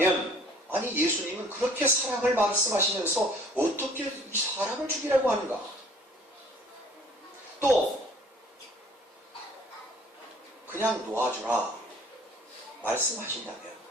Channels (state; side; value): normal; both; correlation 0.54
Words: 아니 예수님은 그렇게 사랑을 말씀하시면서 어떻게 이 사람을 죽이라고 하는가? 또 그냥 놓아주라 말씀하신다면